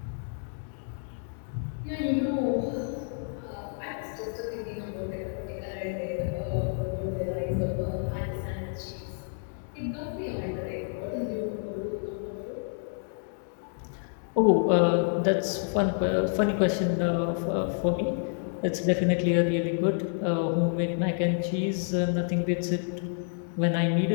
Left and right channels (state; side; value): silent; right; digital silence